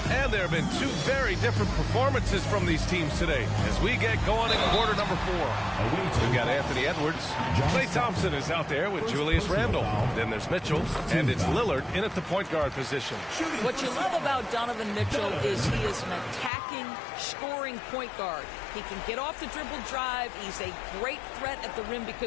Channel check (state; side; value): drops out; right; at 16.5 s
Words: And there have been two very different performances from these teams today as we get going in quarter number 4. We've got Anthony Edwards. Klay Thompson is out there with Julius Randle. Then there's Mitchell, and it's Lillard in at the point guard position. What you love about Donovan Mitchell is he is an attacking, scoring point guard. He can get off the dribble drive. He's a great threat at the rim